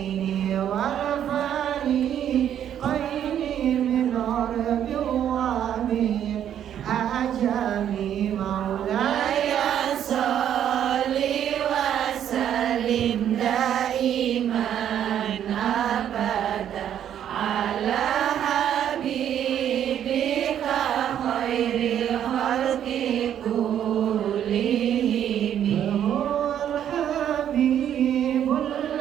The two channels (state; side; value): quieter; left; 10.0 dB